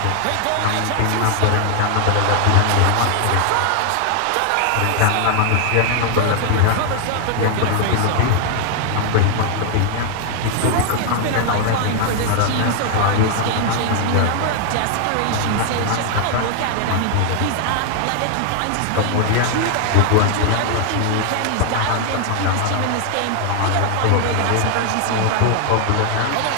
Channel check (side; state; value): both; different; correlation 0.00